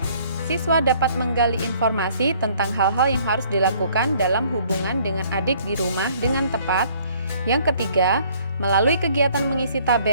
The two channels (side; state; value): both; inverted; correlation -0.59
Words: siswa dapat menggali informasi tentang hal-hal yang harus dilakukan dalam hubungan dengan adik di rumah dengan tepat. Yang ketiga, melalui kegiatan mengisi